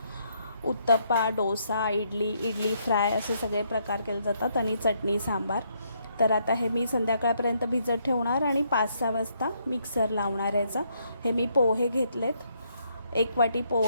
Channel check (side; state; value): both; inverted; correlation -0.73